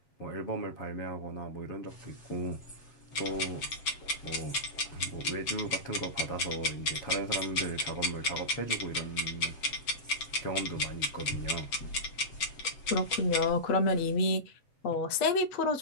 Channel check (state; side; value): late; right; 7.8 ms